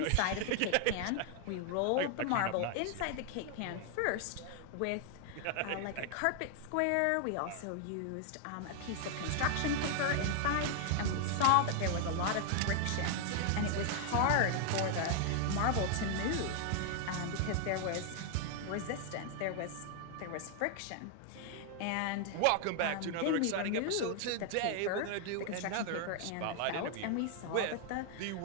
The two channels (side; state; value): both; different; correlation 0.00